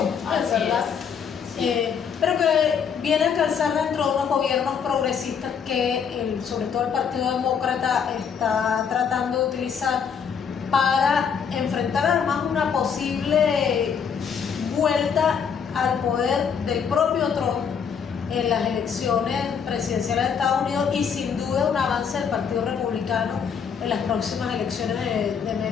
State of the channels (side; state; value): right; quieter; 6.9 dB